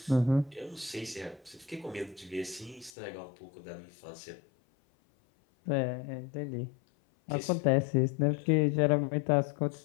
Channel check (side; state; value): right; drops out; at 2.9 s